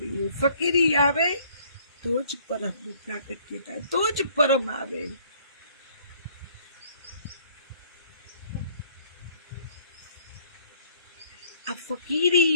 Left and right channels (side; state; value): both; inverted; correlation -0.60